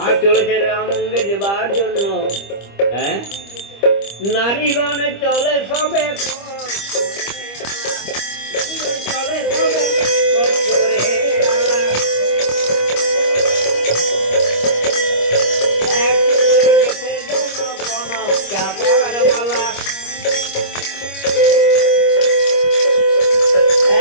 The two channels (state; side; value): late; right; 25 ms